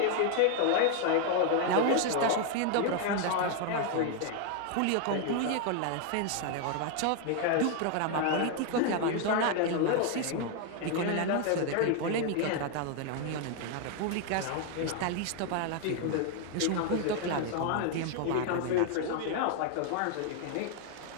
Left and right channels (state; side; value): different; both; correlation 0.00